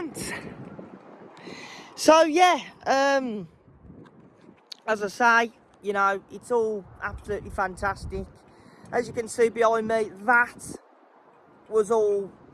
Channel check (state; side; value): identical; both; correlation 1.00